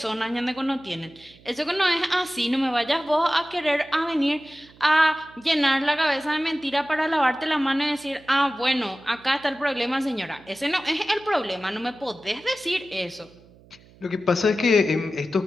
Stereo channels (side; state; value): right; noise; hum, 26 dB below the sound